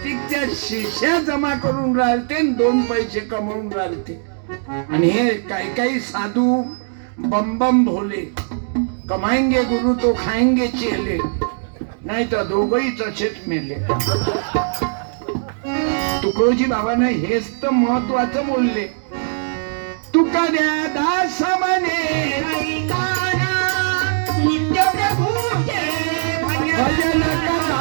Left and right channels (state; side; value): silent; left; digital silence